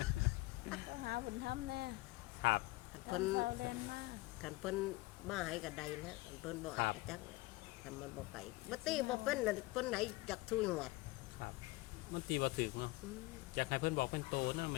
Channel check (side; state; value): right; quieter; 21.0 dB